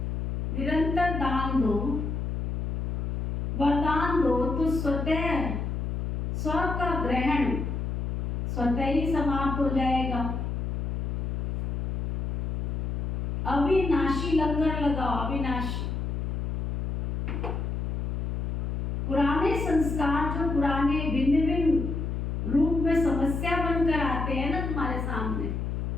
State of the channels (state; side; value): noise; left; hum, 2 dB below the sound